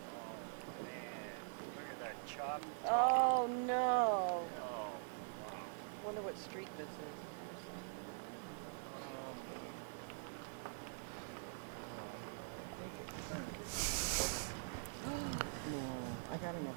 Oh, man. Look at that chopped. Oh, no. Oh, wow. Wonder what street this is. Is there a sign? Oh, I think it turned. No, I got an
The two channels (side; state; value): left; silent; digital silence